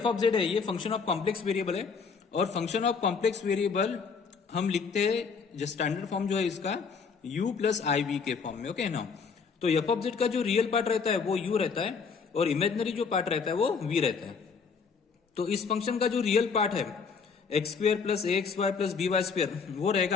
ऑफ जेड है ये फंक्शन ऑफ कॉम्प्लेक्स वेरिएबल है, और फंक्शन ऑफ कॉम्प्लेक्स वेरिएबल हम लिखते हैं जो स्टैंडर्ड फॉर्म जो है इसका u प्लस आई वी के फॉर्म में। ओके ना, तो एफ ऑफ जेड का जो रियल पार्ट रहता है वो u रहता है और इमेजिनरी जो पार्ट रहता है वो v रहता है। तो इस फंक्शन का जो रियल पार्ट है x square plus a x y plus b y square वो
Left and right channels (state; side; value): quieter; right; 5.5 dB